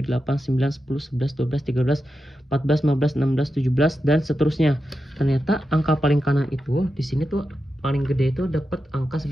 8 9 10 11 12 13 14 15 16 17 dan seterusnya. Ternyata angka paling kanan itu di sini tuh paling gede itu dapat angka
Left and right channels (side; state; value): both; normal; correlation 0.89